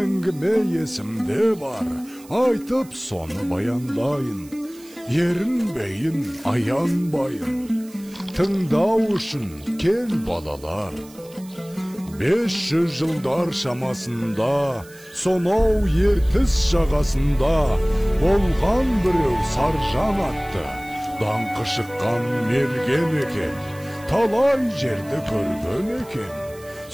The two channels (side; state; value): right; noise; hiss, 23 dB below the sound